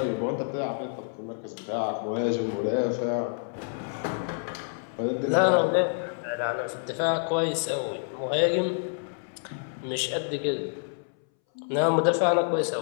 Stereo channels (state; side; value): silent; right; 59 dB below the other